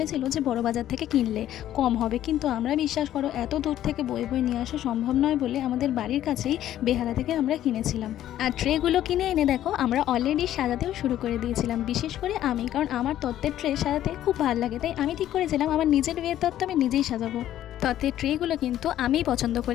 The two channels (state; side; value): quieter; right; 12.3 dB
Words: যে বড় বাজার থেকে কিনলে কম হবে, কিন্তু আমরা বিশ্বাস করো এত দূর থেকে বয়ে বয়ে নিয়ে আসা সম্ভব নয় বলে আমাদের বাড়ির কাছেই বেহালা থেকে আমরা কিনেছিলাম। আর ট্রেগুলো কিনে এনে দেখো আমরা অলরেডি সাজাতেও শুরু করে দিয়েছিলাম, বিশেষ করে আমি, কারণ আমার তত্ত্বের ট্রে সাজাতে খুব ভালো লাগে। তাই আমি ঠিক করেছিলাম আমার নিজের বিয়ের তত্ত্ব আমি নিজেই সাজাবো। তত্ত্বের ট্রেগুলো কিন্তু আমিই পছন্দ